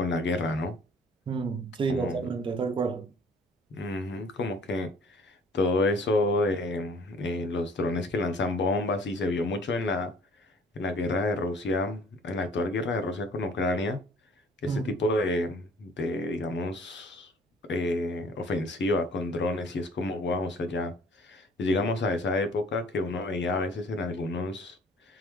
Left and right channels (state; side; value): normal; both; correlation 0.53